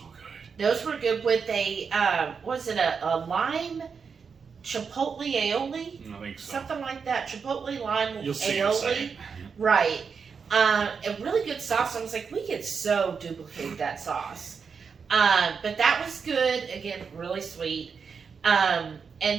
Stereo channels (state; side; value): quieter; left; 5.9 dB